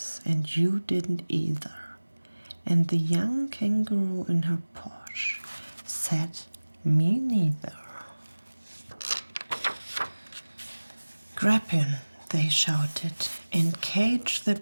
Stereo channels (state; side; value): inverted; both; correlation -1.00